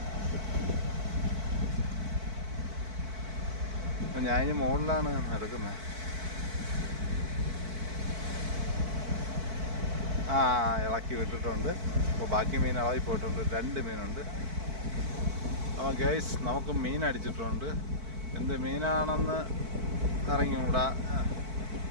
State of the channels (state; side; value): late; left; 4.5 ms